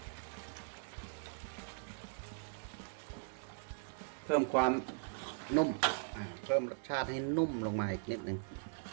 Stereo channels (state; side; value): silent; left; 51 dB below the other